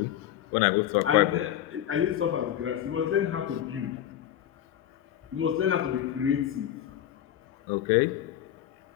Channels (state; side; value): quieter; right; 11.4 dB